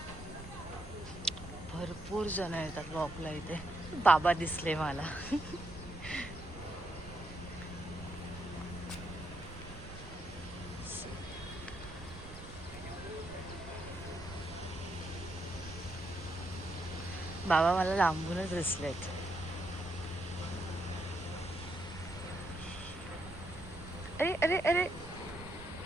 भरपूर जण येतात वॉकला इथे. बाबा दिसले मला. बाबा मला लांबूनच दिसलेत. अरे अरे अरे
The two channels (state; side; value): noise; right; rumble, 14 dB below the sound